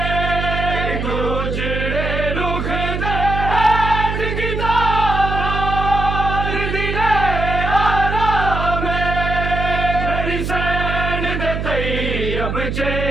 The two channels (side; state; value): right; noise; hum, 3 dB below the sound